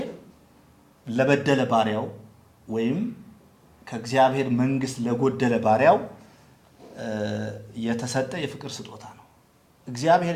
ለበደለ ባሪያው ወይም ከእግዚአብሔር መንግስት ለጎደለ ባሪያው የተሰጠ የፍቅር ስጦታ ነው። እግዚአብሔር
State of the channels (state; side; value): identical; both; correlation 1.00